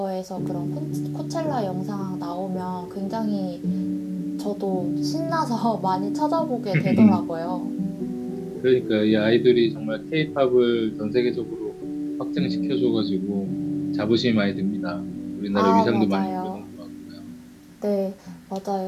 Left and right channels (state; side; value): identical; both; correlation 1.00